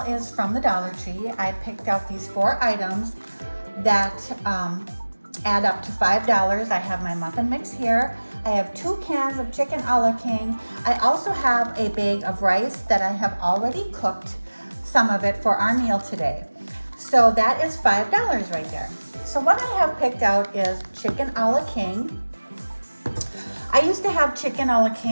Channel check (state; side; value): inverted; both; correlation -1.00